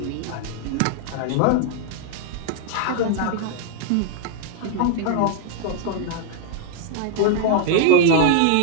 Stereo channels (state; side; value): different; both; correlation 0.00